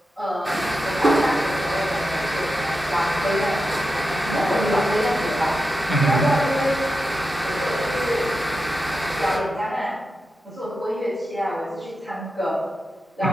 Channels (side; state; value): both; normal; correlation 0.90